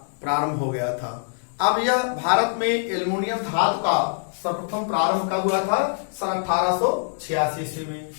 प्रारंभ हो गया था। अब यह भारत में एल्युमिनियम धातु का सर्वप्रथम प्रारंभ कब हुआ था? सन 1886 ईस्वी में।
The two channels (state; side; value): silent; right; digital silence